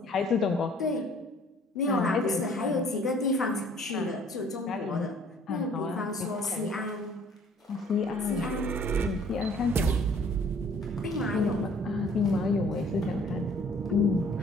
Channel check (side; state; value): both; normal; correlation 0.55